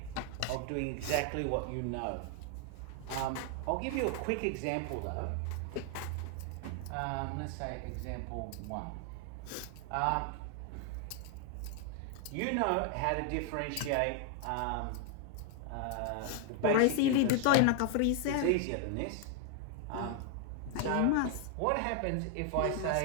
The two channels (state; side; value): different; both; correlation 0.00